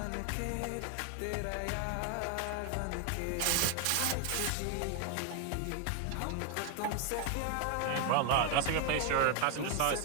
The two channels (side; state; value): both; different; correlation 0.00